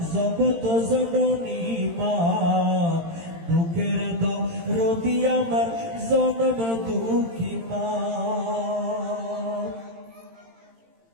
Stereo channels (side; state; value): left; late; 18 ms